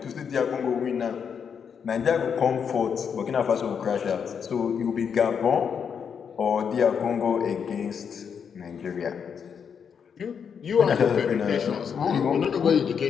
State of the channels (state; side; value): quieter; right; 7.0 dB